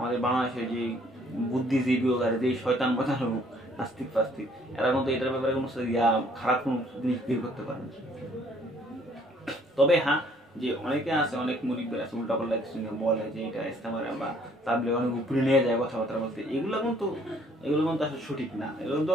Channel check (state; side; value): normal; both; correlation 0.61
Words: বাংলাদেশে যে বুদ্ধিজীবী হোক আর যে শয়তান বাঁচানো হোক, নাস্তিক ফাস্তিক, এরা কিন্তু এটার ব্যাপারে কোনো খারাপ কোনো জিনিস বের করতে পারে না। তবে হ্যাঁ, যে অনেকে আছে, অনেক মুরিব্বির আছে উল্টাপাল্টা কিছু বলে যে এটা ইস্তেমার বা তাবলিগ অনেক উপরে নিয়ে যায় কথাবার্তা বলতে, এগুলো কিন্তু আসলে সঠিক না। এগুলো তো